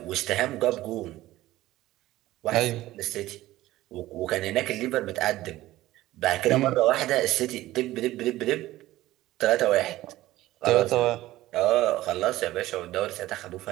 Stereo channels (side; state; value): left; quieter; 16.2 dB